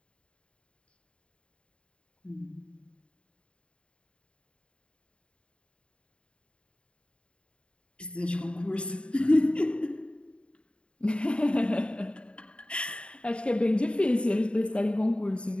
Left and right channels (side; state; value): right; late; 0.056 ms